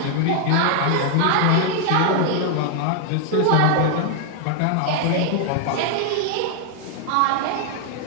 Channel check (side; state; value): both; different; correlation 0.00